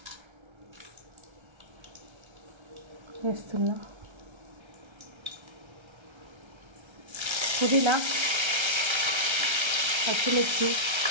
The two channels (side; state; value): left; late; 1.3 ms